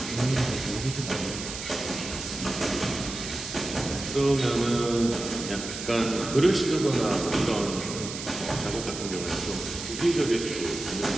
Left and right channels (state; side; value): noise; right; hiss, 8 dB below the sound